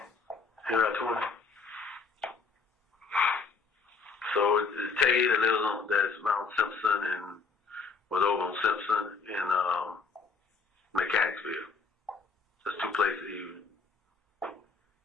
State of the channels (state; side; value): quieter; right; 4.8 dB